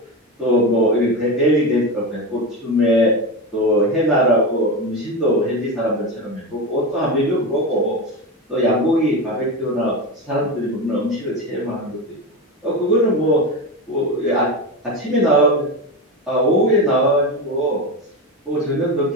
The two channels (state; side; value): normal; both; correlation 0.19